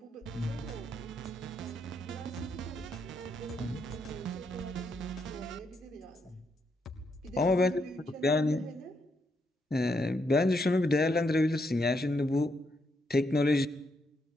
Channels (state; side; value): normal; both; correlation 0.78